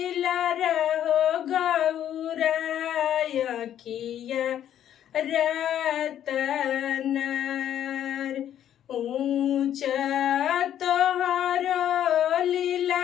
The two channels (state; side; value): quieter; right; 10.6 dB